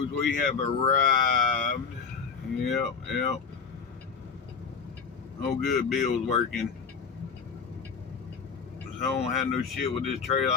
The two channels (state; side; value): quieter; right; 5.8 dB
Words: We have arrived. Yep. Oh, good. Bill's working. So I don't have no shit with this trailer.